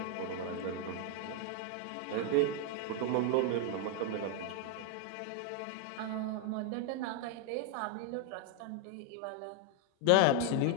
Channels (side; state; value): both; different; correlation 0.00